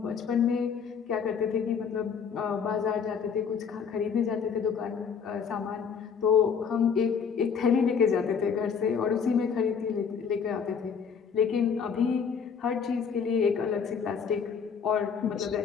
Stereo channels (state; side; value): quieter; right; 6.5 dB